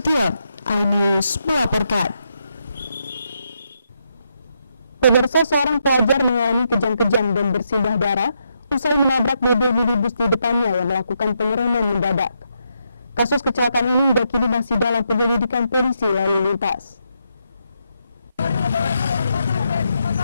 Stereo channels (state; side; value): inverted; both; correlation -0.81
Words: iNews melaporkan. Pemirsa, seorang pelajar mengalami kejang-kejang dan bersimbah darah usai menabrak mobil minibus di depannya yang melakukan pengereman mendadak. Kasus kecelakaan ini hingga kini masih dalam penyelidikan polisi lalu lintas.